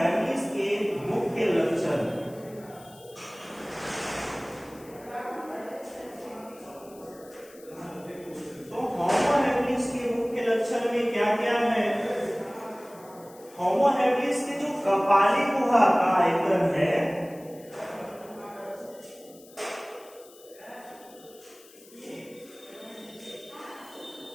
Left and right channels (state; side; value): noise; left; hiss, 23 dB below the sound